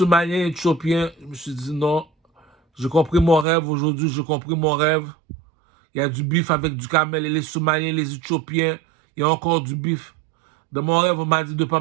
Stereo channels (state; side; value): drops out; left; at 3.5 s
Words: éthiopien, je me suis dit non, j'ai compris mon rêve aujourd'hui, j'ai compris mon rêve. Il y a du bif avec du camel et les Somaliens, les Éthiopiens, il y a encore du bif. Dans mon rêve, on m'a dit de ne pas